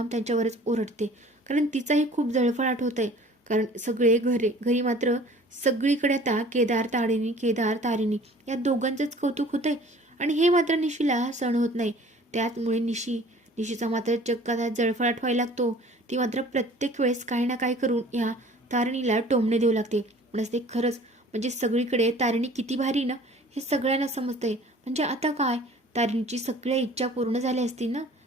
त्यांच्यावरच ओरडते. कारण तिचाही खूप जळफळाट होत आहे. कारण सगळे घरी मात्र सगळीकडे आता केदार तारिणी या दोघांचंच कौतुक होतंय. आणि हे मात्र निशीला सहन होत नाही. त्याचमुळे निशीचा मात्र चक्क आता जळफळाट व्हायला लागतो. ती मात्र प्रत्येक वेळेस काही ना काही करून ह्या तारिणीला टोमणे देऊ लागते. पण असते खरंच म्हणजे सगळीकडे तारिणी किती भारी ना, हे सगळ्यांना समजतंय. म्हणजे आता काय, तारिणीची सगळ्या इच्छा पूर्ण झाल्या असतील ना.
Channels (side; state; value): both; normal; correlation 0.49